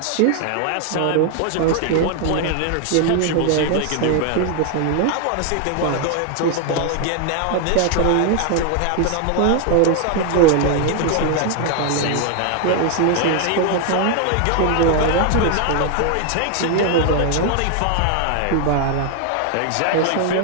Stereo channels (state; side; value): different; both; correlation 0.00